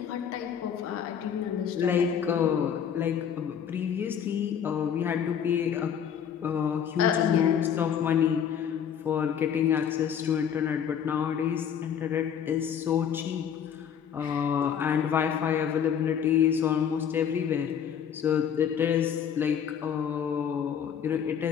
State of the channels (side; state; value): right; quieter; 8.3 dB